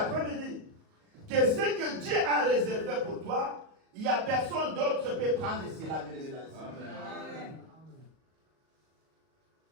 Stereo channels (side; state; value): left; late; 38 ms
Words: que ce que Dieu a réservé pour toi, il n'y a personne d'autre qui peut prendre cela, bien aimé, dans le Seigneur.